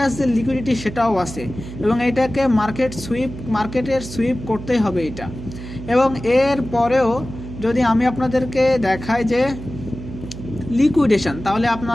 যে লিকুইডিটি সেটাও আছে, এবং এটাকে মার্কেটের সুইপ করতেই হবে এটা। এবং এর পরেও যদি আমি আপনাদেরকে দেখাই যে লিকুইডেশন, তাহলে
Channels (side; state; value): right; noise; hum, 11 dB below the sound